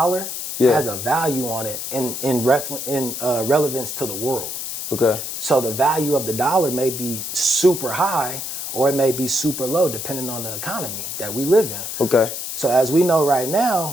has a value on it in relevance to the world. Okay. So the value of the dollar may be super high or it may be super low depending on the economy that we live in. Okay. So as we know right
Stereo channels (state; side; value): noise; left; hiss, 6 dB below the sound